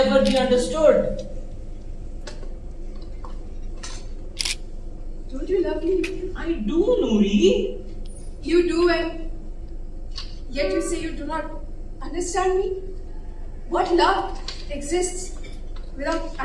be understood. Don't you love me? I do, Nuri. You do, and yet you say you do not understand me? What love exists without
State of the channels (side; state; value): both; identical; correlation 1.00